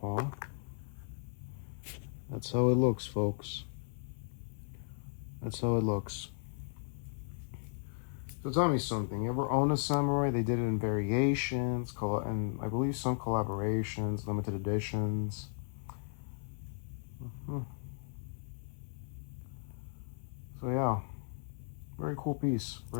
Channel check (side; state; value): right; silent; 54 dB below the other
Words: paw. That's how it looks, folks. That's how it looks. So tell me something. You ever own a samurai? They did it in variations, and I believe some collaborations, limited editions. So yeah, very cool piece.